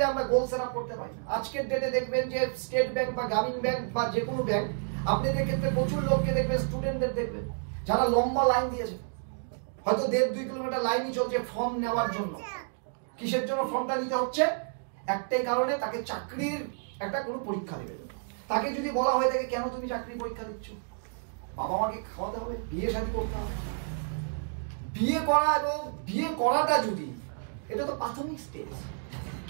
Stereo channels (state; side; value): silent; left; digital silence